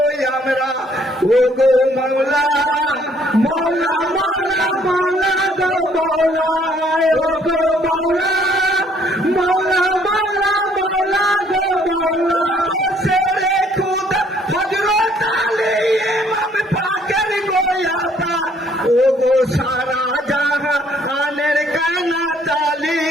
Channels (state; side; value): normal; both; correlation 0.64